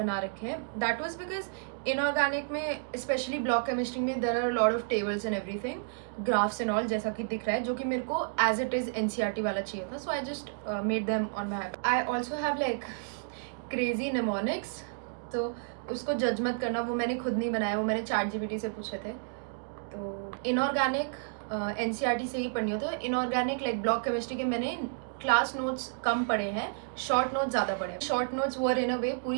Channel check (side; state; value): left; silent; digital silence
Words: रखे हैं. दैट वाज बिकॉज इनऑर्गेनिक में स्पेशली ब्लॉक केमिस्ट्री में there are lot of tables and everything, graphs and all, जैसा कि दिख रहा है, जो कि मेरे को एज इट इज़ NCERT वाला चाहिए था. So I just made them on my iPad. I also have like crazy mnemonics, तो उसको जज मत करना, वो मैंने खुद नहीं बनाया, वो मैंने ChatGPT से पूछे थे. तो इनऑर्गेनिक NCERT से ही पढ़नी होती है. इनऑर्गेनिक लाइक ब्लॉक केमिस्ट्री के मैंने क्लास नोट्स कम पढ़े हैं, शॉर्ट नोट्स ज़्यादा पढ़े हैं. शॉर्ट नोट्स वर इन अ वे